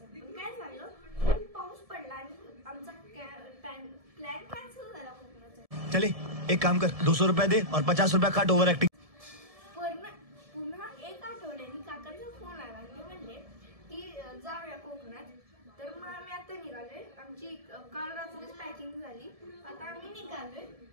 पण काय झालं, खूप पाऊस पडला आणि आमचा प्लॅन कॅन्सल झाला कोकणाचा. चले एक काम कर, 200 रुपये दे और 50 रुपये काट ओव्हर ऍक्टिंग. पुन्हा एक आठवड्याने काकांचा फोन आला. ते म्हणले की जाऊया कोकणात. तर मग आम्ही आता निघालोय. आमची काल रात्रीच पॅकिंग झाली. आता आम्ही निघालोय.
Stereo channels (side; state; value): left; late; 1.7 ms